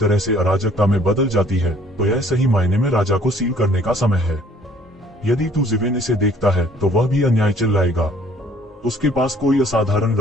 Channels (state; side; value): normal; both; correlation 0.58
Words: से अराजकता में बदल जाती है, तो यह सही मायने में राजा को सील करने का समय है। यदि तू ज़िवेन इसे देखता है तो वह भी अन्याय चिल्लाएगा। उसके पास कोई असाधारण